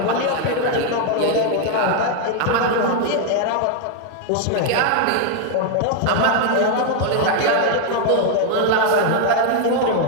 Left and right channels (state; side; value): different; both; correlation 0.00